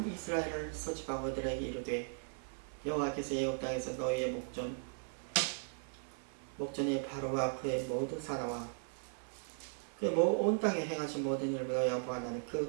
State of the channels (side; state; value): left; silent; 53 dB below the other